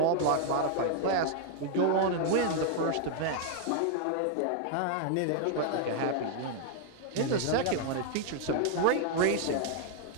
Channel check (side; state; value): both; different; correlation 0.00